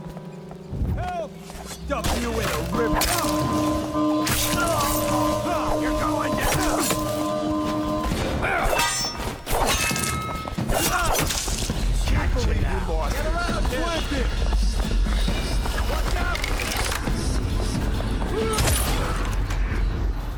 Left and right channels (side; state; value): both; identical; correlation 1.00